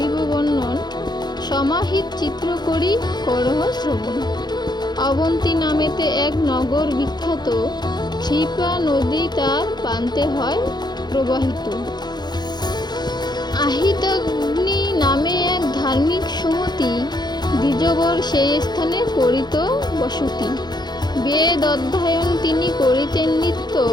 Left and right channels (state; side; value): late; right; 0.21 ms